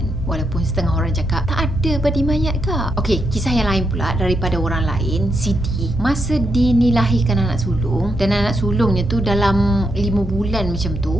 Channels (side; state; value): both; normal; correlation 0.81